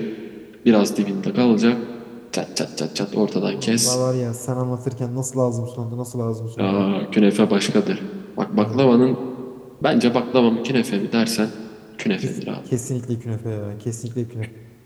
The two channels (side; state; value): both; identical; correlation 1.00